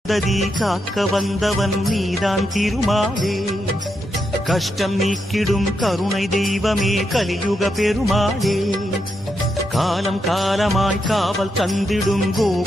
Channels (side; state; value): both; normal; correlation 0.83